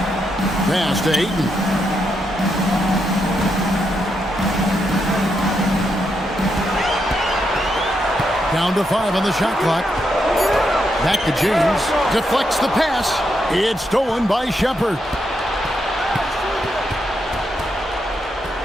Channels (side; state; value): both; normal; correlation 0.81